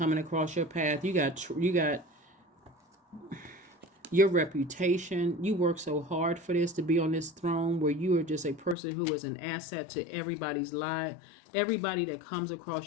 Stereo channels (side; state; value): right; drops out; at 8.8 s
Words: across your path. You got your reputation. You work so hard for this, to be on this throne where you are just a person who is an asset to everybody's life. Everybody that comes